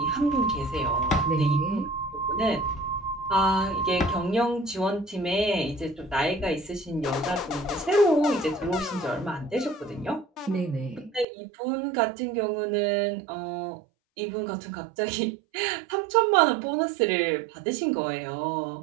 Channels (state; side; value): drops out; left; at 11.2 s